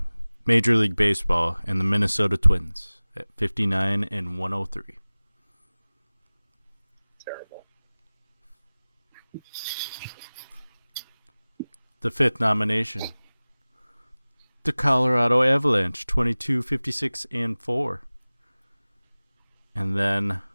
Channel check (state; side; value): inverted; both; correlation -0.99